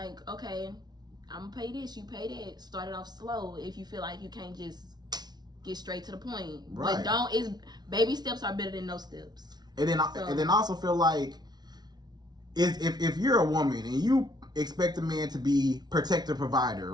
okay, I'm gonna pay this, you pay that. Start it off slow if you feel like you can't just get straight to the point. Right. But baby steps are better than no steps. And then I also feel like if you're a woman and you expect a man to be protector provider,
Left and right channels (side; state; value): left; late; 0.19 ms